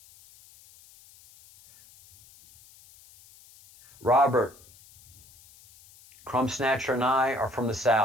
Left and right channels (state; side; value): noise; left; hiss, 25 dB below the sound